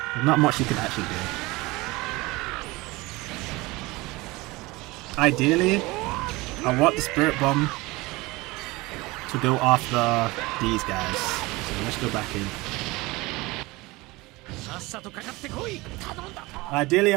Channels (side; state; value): left; quieter; 22.0 dB